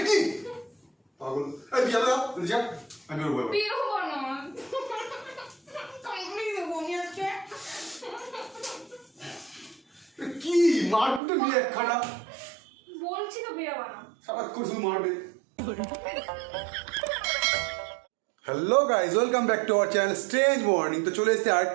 কি পাগল, এই বিয়া দাও যা, আমি বেরোবো। বের হবো না, কামড়ে দেবো আমি আজকে। কি মারপিটে নিয়ে একখানা, বলছি তো বেরোবা না, সারাক্ষণ শুধু মারবে। Hello guys, welcome back to our channel strange morning. তো চলে এসেছি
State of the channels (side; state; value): left; drops out; at 11.2 s